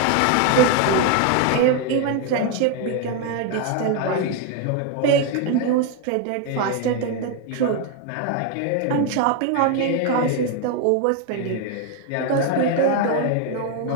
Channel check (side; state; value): both; different; correlation 0.01